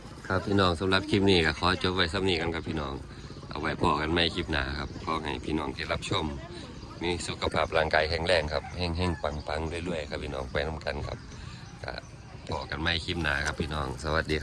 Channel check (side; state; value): both; identical; correlation 1.00